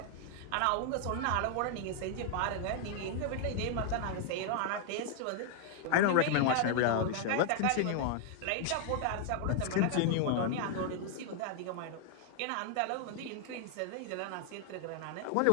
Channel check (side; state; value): both; different; correlation 0.00